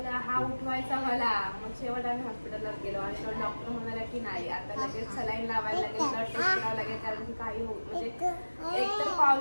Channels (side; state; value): both; inverted; correlation -1.00